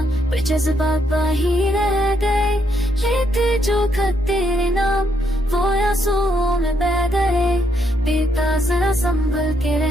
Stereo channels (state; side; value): normal; both; correlation 0.75